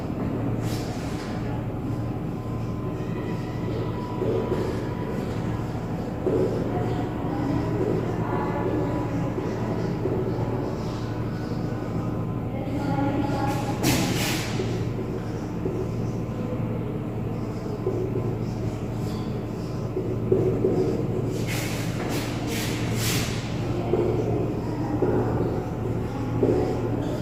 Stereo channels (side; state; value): both; identical; correlation 1.00